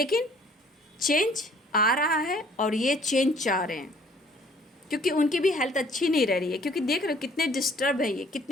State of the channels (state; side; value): normal; both; correlation 0.57